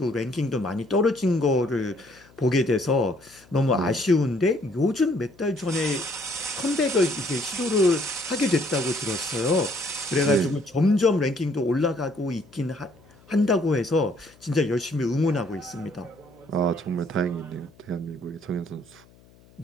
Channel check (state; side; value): noise; left; hum, 27 dB below the sound